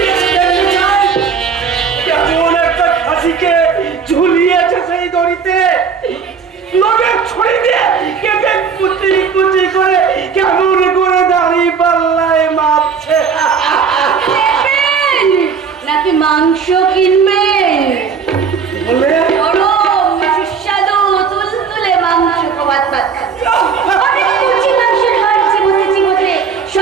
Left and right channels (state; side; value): quieter; left; 6.1 dB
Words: যেতে চাই। কেমন একটা খাসিকে ঝুলিয়েছে সেই দড়িতে, লোকের ছড়ি দিয়ে কেটে কুচি কুচি করে কেমন করে দাঁড়িয়ে পাল্লায় মাপছে। নেবেন নাকি মাংস কিনবেন? বলে গরম সুস্বাদু তুলতুলে মাংস ভাত অনেক কুচি মাংসের হাড় চিবোতে